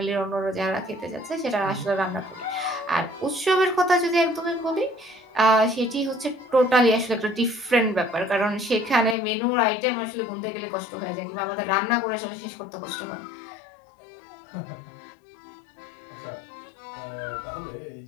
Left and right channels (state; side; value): drops out; right; at 9.2 s